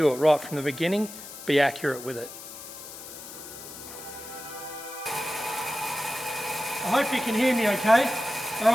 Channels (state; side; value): noise; left; hiss, 13 dB below the sound